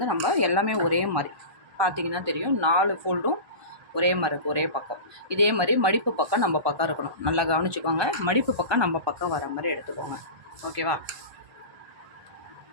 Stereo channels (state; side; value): late; left; 1.2 ms